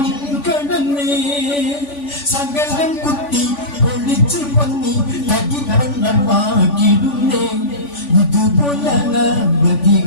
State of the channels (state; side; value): late; right; 3.5 ms